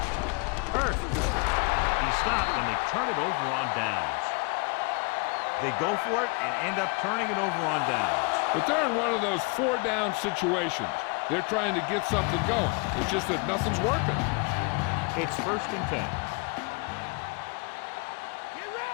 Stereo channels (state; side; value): quieter; right; 30.3 dB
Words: Earth. He stopped, and they turn it over on downs. They go for it and end up turning it over on downs. But they're in one of those 4-down situations. They're trying to get something going. It's just that nothing's working. It's 1st and 10.